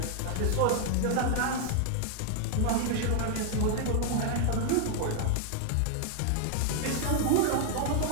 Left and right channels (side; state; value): both; different; correlation 0.00